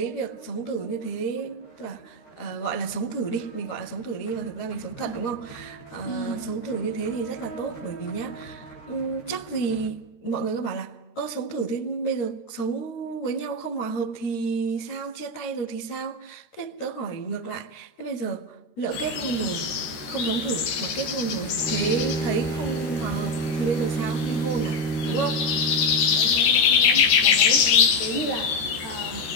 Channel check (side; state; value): right; late; 13 ms